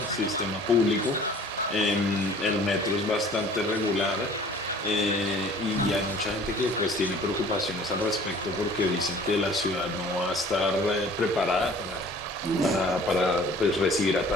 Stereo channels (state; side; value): normal; both; correlation 0.50